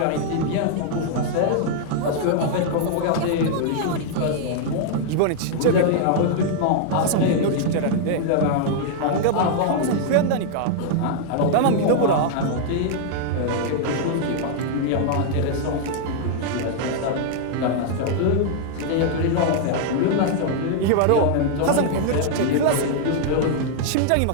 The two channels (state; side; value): different; both; correlation -0.01